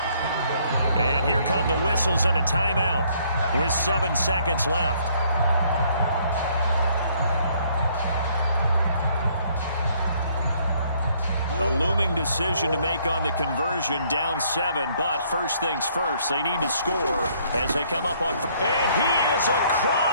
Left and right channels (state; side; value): inverted; both; correlation -0.65